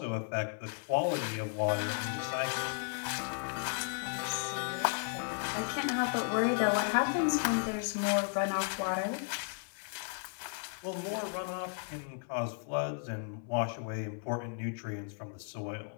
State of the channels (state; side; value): silent; right; 55 dB below the other